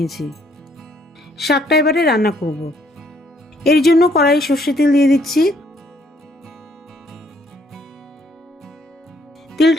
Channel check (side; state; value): both; normal; correlation 0.67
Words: শাকটা এবারে রান্না করব। এর জন্য কড়াই সর্ষে তেল দিয়ে দিচ্ছি।